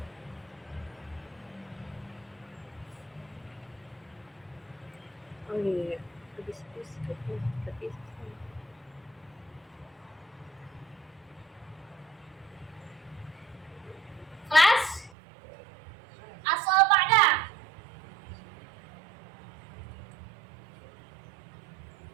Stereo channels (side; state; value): left; drops out; at 15.1 s